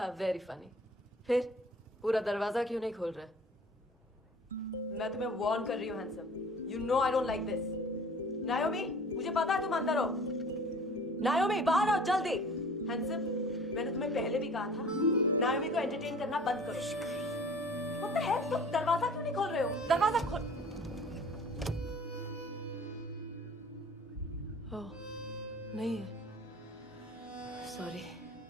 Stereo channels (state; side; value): normal; both; correlation 0.47